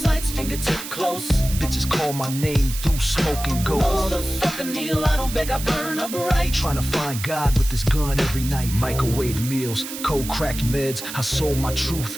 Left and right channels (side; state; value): right; noise; hiss, 9 dB below the sound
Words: fingertip close. Bitches call my name through smoke and ghost. Motherfucker kneel, I don't beg, I burn up right. Trying to find God with this gun every night. Microwave meals, cold cracked meds. I sold my truth